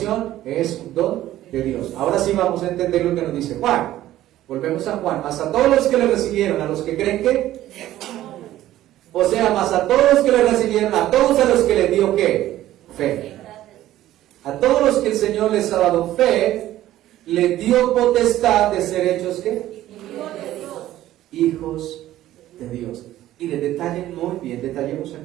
es un don de Dios. Ahora sí vamos a entender lo que nos dice Juan. Volvemos a Juan. Mas a todos los que le recibieron, a los que creen que, o sea, más a todos los que le recibieron, a todos a los que le dio ¿qué? Fe. A todos los que el Señor les ha dado fe, le dio potestad de ser hechos ¿qué? Hijos de Dios. Y le detallen muy bien, detallemos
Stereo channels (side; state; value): left; quieter; 14.0 dB